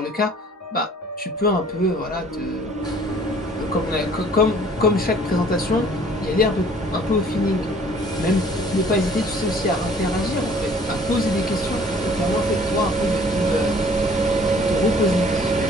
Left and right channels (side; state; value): both; normal; correlation 0.54